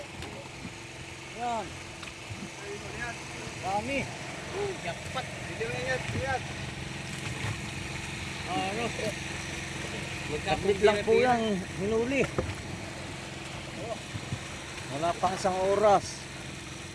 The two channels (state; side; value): identical; both; correlation 1.00